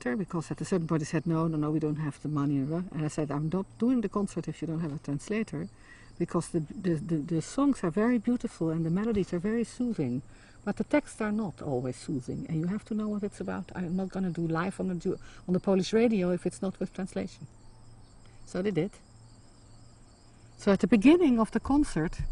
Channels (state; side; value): identical; both; correlation 1.00